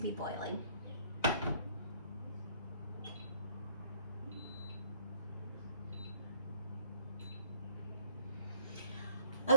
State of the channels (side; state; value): both; inverted; correlation -0.58